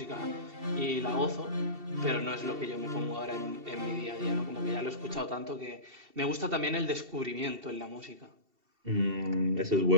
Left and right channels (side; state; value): left; late; 2.7 ms